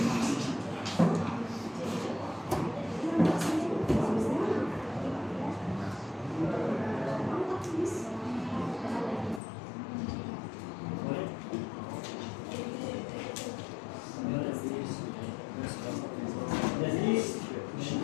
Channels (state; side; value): drops out; right; at 9.4 s